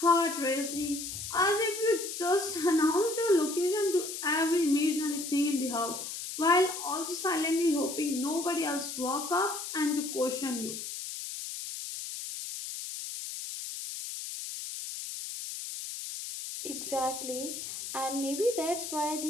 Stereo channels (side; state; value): left; noise; hiss, 7 dB below the sound